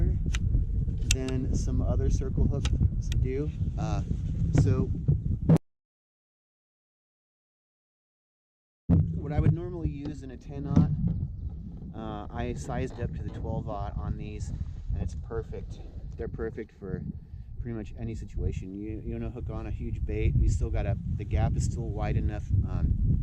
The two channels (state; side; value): identical; both; correlation 1.00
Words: than some other circle hooks do. So what I would normally use in a 10-aught, I sized up to the 12-aught on these, and it's perfect. They're perfect for pretty much any situation. You want to hook on a huge bait, you still gotta, the gap is still wide enough,